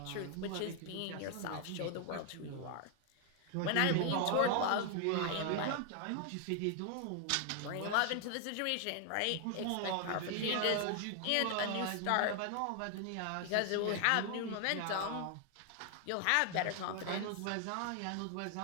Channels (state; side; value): different; both; correlation 0.00